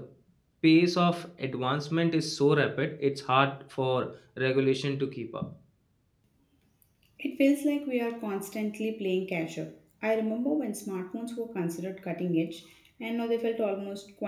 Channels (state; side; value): identical; both; correlation 1.00